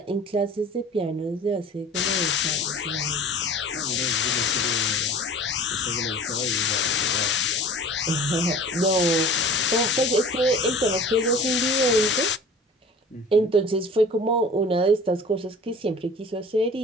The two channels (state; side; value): normal; both; correlation 0.42